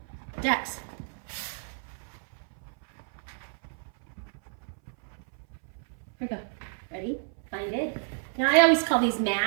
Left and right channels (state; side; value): silent; left; 58 dB below the other